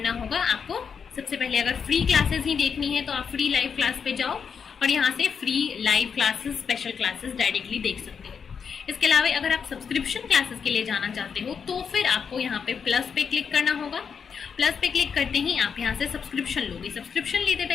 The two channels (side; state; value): right; quieter; 6.5 dB